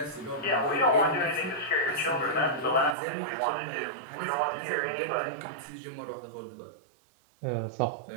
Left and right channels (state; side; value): drops out; left; at 3.0 s